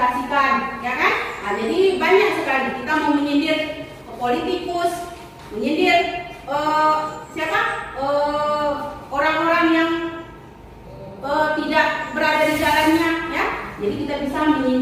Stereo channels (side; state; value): both; identical; correlation 1.00